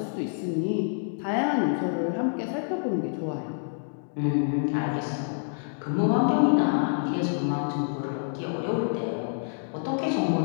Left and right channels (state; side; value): silent; right; digital silence